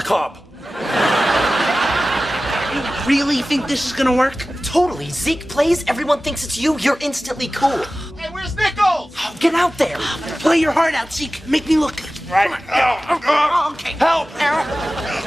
cob. You really think this is gonna work? Totally. Zeke plays, everyone thinks it's you, you're instantly cool. Hey, where's Nichols? Oh, get out there. Play your heart out, Zeke. Make me look good. Right. Okay. Help!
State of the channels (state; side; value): normal; both; correlation 0.96